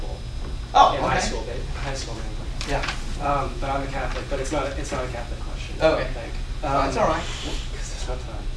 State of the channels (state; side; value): identical; both; correlation 1.00